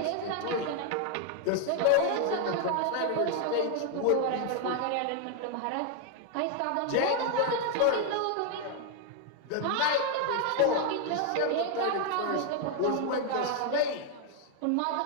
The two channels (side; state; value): both; different; correlation 0.00